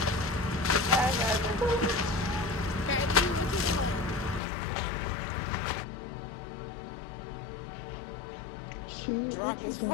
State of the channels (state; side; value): drops out; right; at 4.4 s